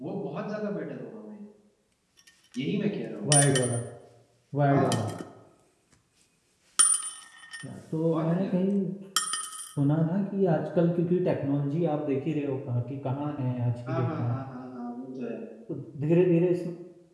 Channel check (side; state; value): both; identical; correlation 1.00